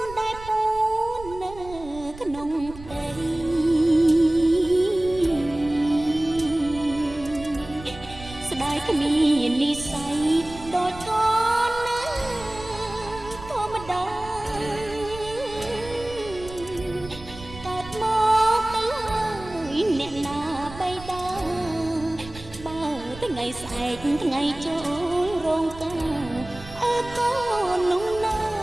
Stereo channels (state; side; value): noise; right; rumble, 16 dB below the sound